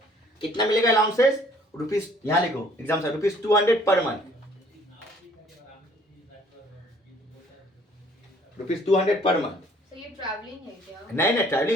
कितना मिलेगा अलाउंसेस? रुपीज, यहां लिखो एग्जाम से, ₹200 per month, ₹200 per month. So ये traveling है क्या? नहीं नहीं,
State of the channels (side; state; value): both; normal; correlation 0.58